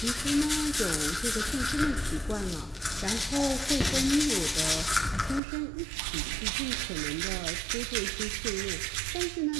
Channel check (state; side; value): drops out; left; at 5.4 s